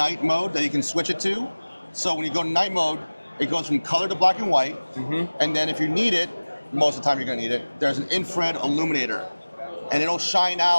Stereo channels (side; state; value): both; inverted; correlation -1.00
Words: mode that you can switch it to. So when you go to night mode, it goes from color to black and white. And then if you need it, most of the time you're gonna need it, there's an infrared illuminator. And it'll shine